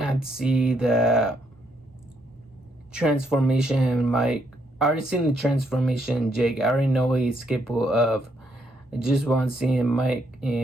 to have to see the transformation in Mike. I already seen the transformation in Jake. I already know what he's capable of. I just want to see Mike.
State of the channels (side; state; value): both; normal; correlation 0.74